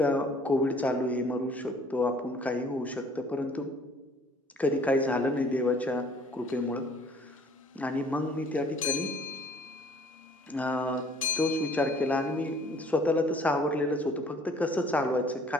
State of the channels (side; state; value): both; normal; correlation 0.55